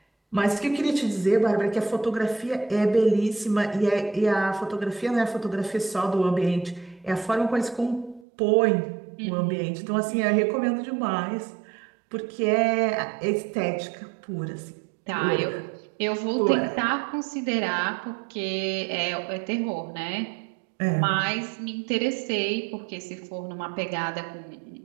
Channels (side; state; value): left; drops out; at 8.2 s